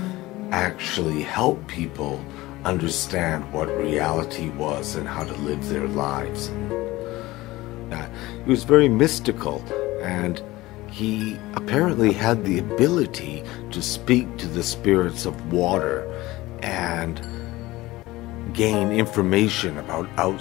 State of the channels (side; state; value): right; quieter; 18.8 dB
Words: actually help people understand what reality was and how to live their lives. He was very mystical, and he apparently had the ability to speak to the spirits of water and gain information about